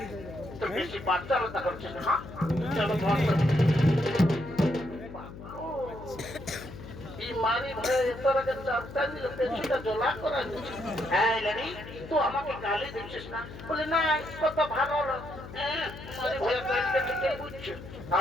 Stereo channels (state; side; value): noise; left; hum, 13 dB below the sound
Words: তো বেশি বাচ্চালতা করছিস না? চলো মারি ভয়ে তোর আগে চাপটা দিল, পেছনটা জোলা করা দিচ্ছে। এই লেডি তুই আমাকে গালি দিচ্ছিস না? বলে না কত ভালো মারি ভয়ে গালিটা ঠিকই বুঝছে।